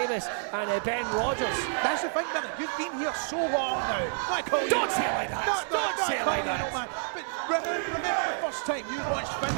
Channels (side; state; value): left; silent; digital silence